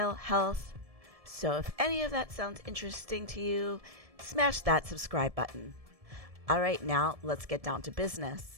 health. So if any of that sounds interesting to you, smash that subscribe button. Alright, now let's get down to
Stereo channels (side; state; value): left; late; 1.7 ms